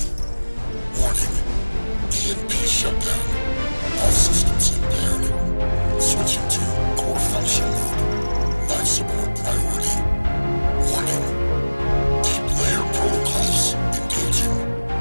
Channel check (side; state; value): both; inverted; correlation -1.00